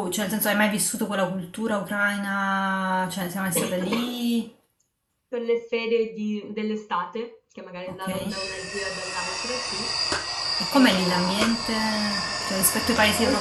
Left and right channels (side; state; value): both; identical; correlation 1.00